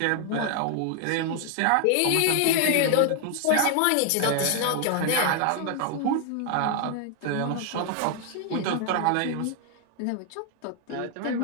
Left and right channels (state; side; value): different; both; correlation 0.00